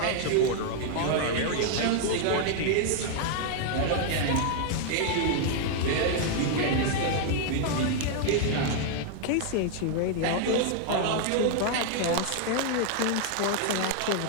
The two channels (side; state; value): both; different; correlation 0.00